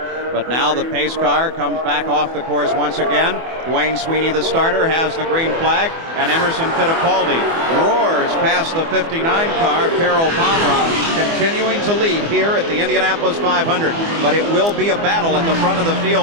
but now the pace car comes back off the course once again. Dwayne Sweeney, the starter, has the green flag, and Emerson Fittipaldi roars past the 59 car, Carol Pomroth, continuing to lead here at the Indianapolis 500, but it will be a battle at the front of the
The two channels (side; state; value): left; late; 24 ms